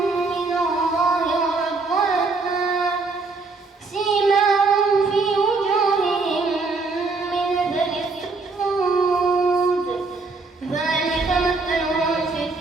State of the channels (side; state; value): left; quieter; 3.9 dB